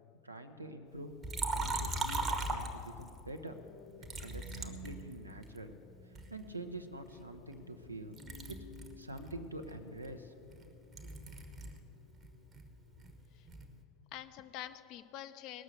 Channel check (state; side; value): normal; both; correlation 0.35